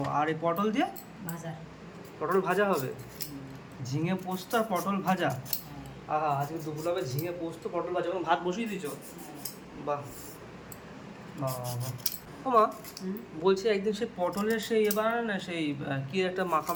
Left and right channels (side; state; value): both; identical; correlation 1.00